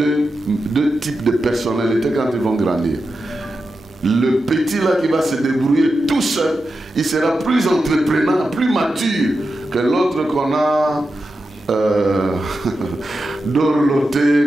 types de personnalités quand ils vont grandir. Le petit là qui va se débrouiller tout seul, il sera plus entreprenant, plus mature que l'autre qu'on a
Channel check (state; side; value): normal; both; correlation 0.90